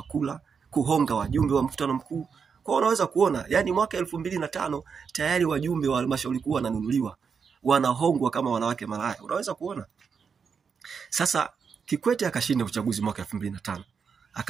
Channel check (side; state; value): left; quieter; 6.1 dB